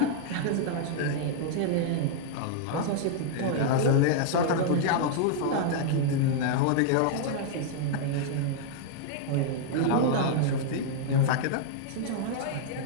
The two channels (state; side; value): different; both; correlation -0.01